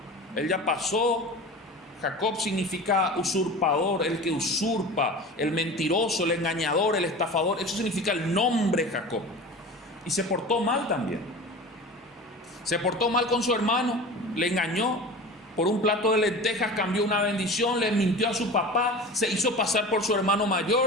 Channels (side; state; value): both; normal; correlation 0.34